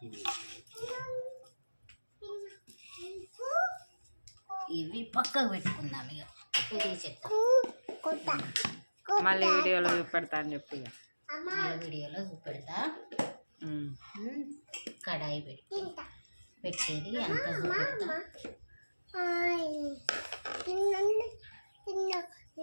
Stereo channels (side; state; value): both; inverted; correlation -1.00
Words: ఇవి పక్కకు పెట్టుకుందాం. ఇక ఇది చెప్తా, మళ్ళీ వీడియోలో చూపెడతా అని చెప్పి వీడియోలో చూపెడతా. కడాయి పెట్టేది అంత చూపెడతా.